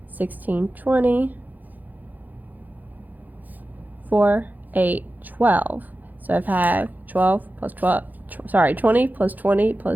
16, 20. 4, 8, 12. So I've had 12 plus 12. 20 plus 20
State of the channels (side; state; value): left; late; 0.083 ms